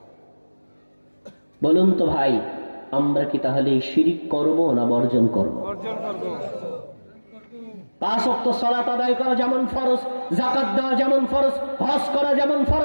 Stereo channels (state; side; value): inverted; both; correlation -1.00